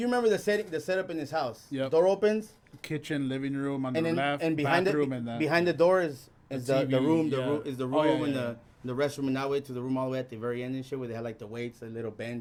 remember the setup in his house. Yep. Door opens, Kitchen, living room on and the then left, and behind bathroom, and that. behind the door is the TV, room. yeah. The room Oh, yeah, over in yeah, the restroom, and that way to the room all the way at the very end and shit, where they had like the weights, a little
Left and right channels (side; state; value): both; identical; correlation 1.00